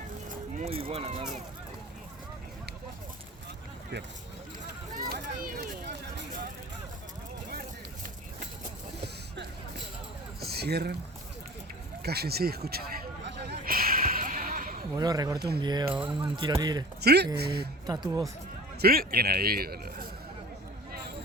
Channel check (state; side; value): normal; both; correlation 0.40